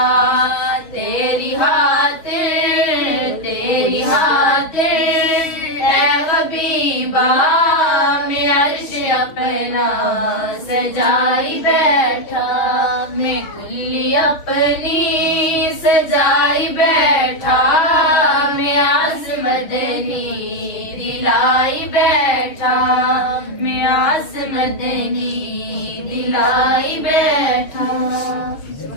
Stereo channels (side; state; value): right; late; 6.8 ms